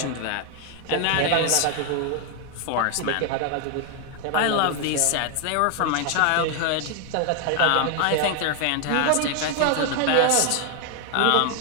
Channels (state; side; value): different; both; correlation 0.00